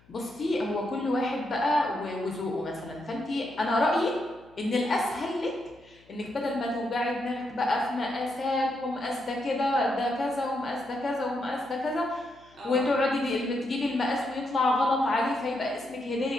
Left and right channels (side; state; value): left; noise; hum, 29 dB below the sound